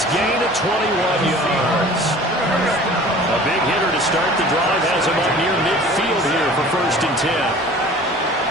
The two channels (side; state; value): both; normal; correlation 0.45